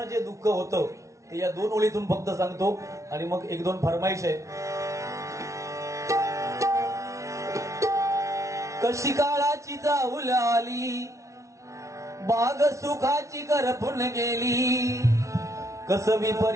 जे दुःख होतं ते या 2 ओळीतून फक्त सांगतो. आणि मग 1-2 फरमाईश आहे. कशी काळाची चाहुल आली, बाग सुखाची करपून गेली, कस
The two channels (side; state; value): left; late; 0.14 ms